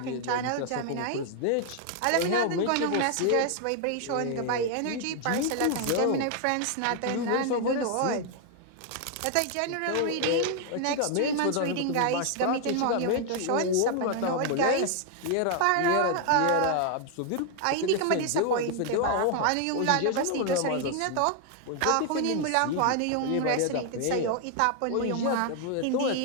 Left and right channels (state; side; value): different; both; correlation 0.00